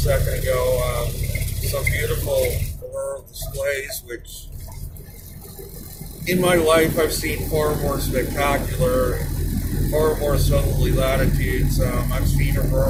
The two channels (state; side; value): identical; both; correlation 1.00